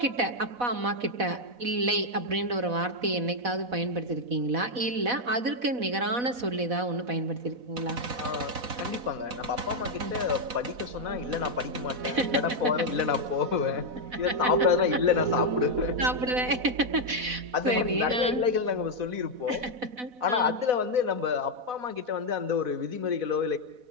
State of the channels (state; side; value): late; left; 4.1 ms